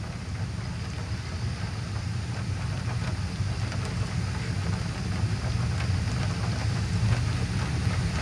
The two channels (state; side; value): identical; both; correlation 1.00